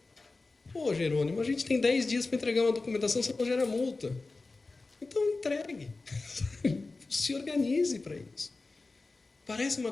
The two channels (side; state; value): right; quieter; 3.6 dB